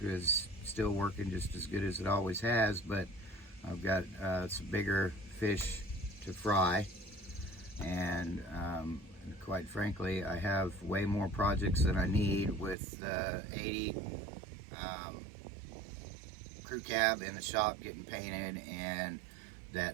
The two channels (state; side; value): drops out; left; at 12.8 s